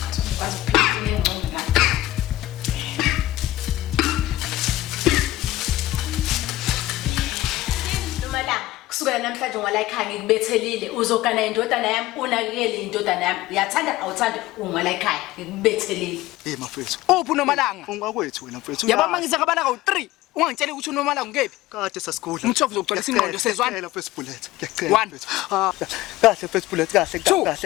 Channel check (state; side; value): quieter; right; 16.5 dB